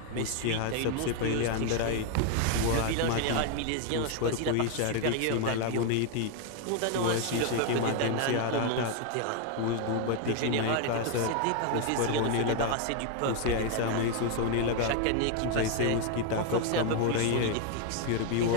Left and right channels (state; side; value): different; both; correlation 0.01